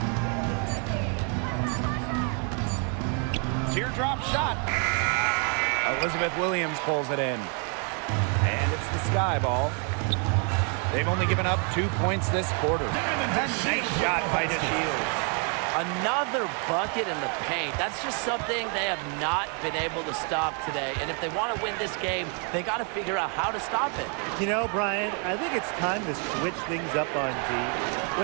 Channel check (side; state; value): left; quieter; 39.2 dB